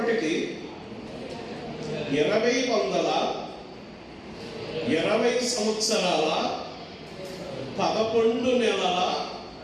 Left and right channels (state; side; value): identical; both; correlation 1.00